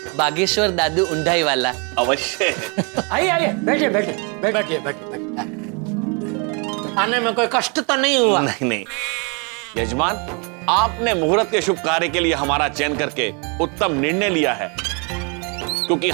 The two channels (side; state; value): left; quieter; 34.6 dB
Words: बागेश्वर दादू उंडाई वाला। अवश्य। आइए आइए, बैठे बैठे बैठिए बैठिए। आने में कोई कष्ट तो नहीं हुआ? नहीं नहीं यजमान, आपने मुहूर्त के शुभ कार्य के लिए हमारा चयन करके उत्तम निर्णय लिया है, क्योंकि